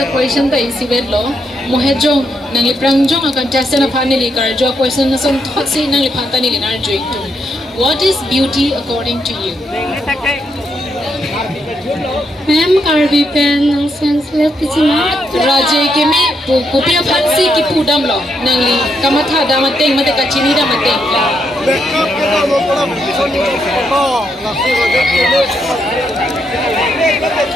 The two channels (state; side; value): normal; both; correlation 0.78